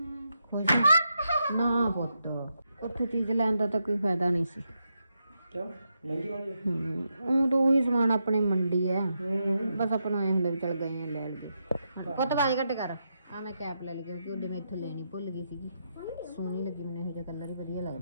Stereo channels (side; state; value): both; inverted; correlation -0.83